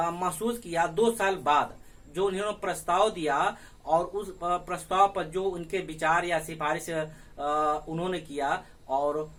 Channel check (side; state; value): both; identical; correlation 1.00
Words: किया 2 साल बाद, जो इन्होंने प्रस्ताव दिया और उस प्रस्ताव पर जो उनके विचार या सिफारिश उन्होंने किया और